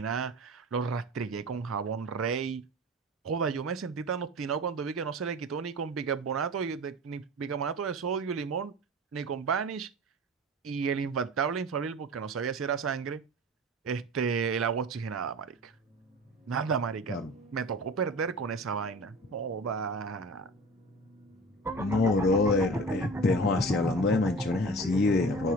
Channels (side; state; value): both; normal; correlation 0.35